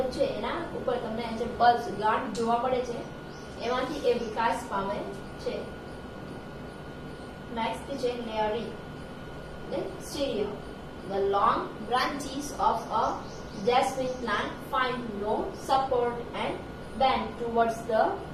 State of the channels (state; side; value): identical; both; correlation 1.00